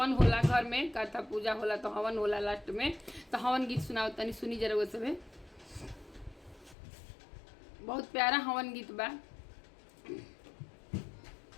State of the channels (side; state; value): right; drops out; at 6.8 s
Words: होला घर में, कथा पूजा होला तो हवन होला लास्ट में, तो हवन गीत सुनावत तनी, सुनी जरा वो सब। बहुत प्यारा हवन गीत बा।